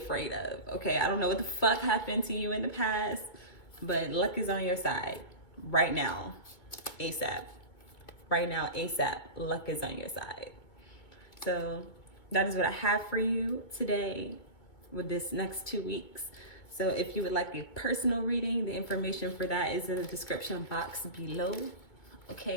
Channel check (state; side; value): late; right; 2.2 ms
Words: of. Okay, I don't know what the fuck happened to you in the past, but luck is on your side right now, ASAP. Right now, ASAP, luck is on your side. So that is what I have for you today with this next 2 weeks. So if you would like a personal reading, the information for that is in the description box below.